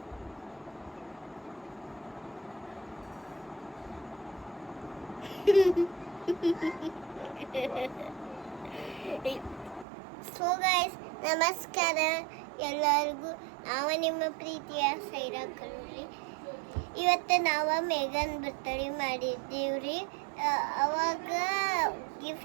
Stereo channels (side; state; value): left; drops out; at 9.9 s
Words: So guys, ನಮಸ್ಕಾರ ಎಲ್ಲರಿಗೂ. ನಾವು ನಿಮ್ಮ ಪ್ರೀತಿಯ ಸೈರಾ ಕಲ್ಲೂರಿ. ಇವತ್ತು ನಾವು ಮೇಘನ್ ಬರ್ತಡೇ ಮಾಡಿದ್ದೀವ್ರಿ. ಅವಾಗ